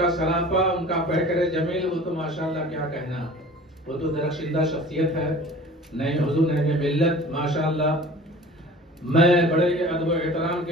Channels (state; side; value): normal; both; correlation 0.43